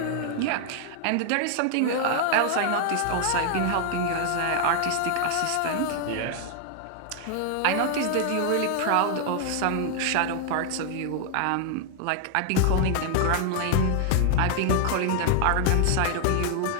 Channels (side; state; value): both; different; correlation 0.00